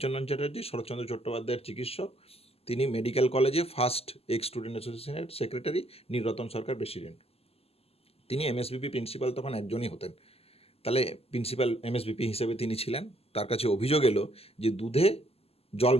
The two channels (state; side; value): late; right; 0.29 ms